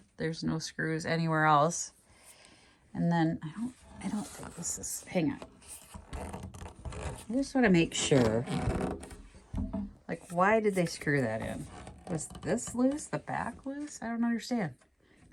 There's no screws anywhere else. And then I don't think this is, hang on. I just want to make sure. Like, why did they screw that in? Was this loose? The back loose? I don't understand.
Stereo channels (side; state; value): both; identical; correlation 1.00